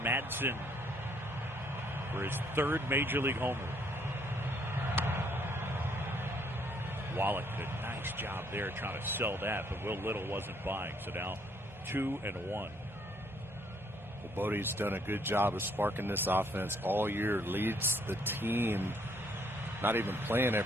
Madsen for his 3rd Major League homer. Wallach did a nice job there trying to sell that, but Will Little wasn't buying. So now 2-1. Well, Bodie's done a good job of sparking this offense all year. Leads the team, not even playing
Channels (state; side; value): normal; both; correlation 0.67